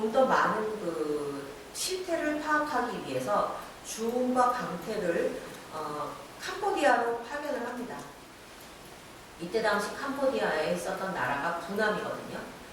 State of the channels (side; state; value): both; identical; correlation 1.00